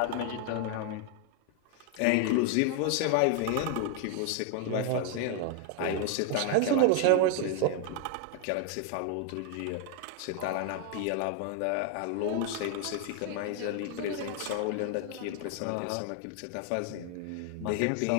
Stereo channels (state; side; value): different; both; correlation 0.01